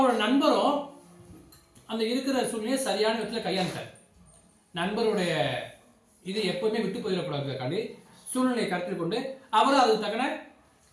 நண்பரும் அந்த இருக்கிற சூழ்நிலையை சரியான விதத்தில் கையாண்டார். நண்பருடைய இது எப்பவுமே விட்டு போயிடக்கூடாதுக்காண்டி சூழ்நிலையை கருத்தில் கொண்டு அவரும் அதுக்கு தக்கன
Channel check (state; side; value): identical; both; correlation 1.00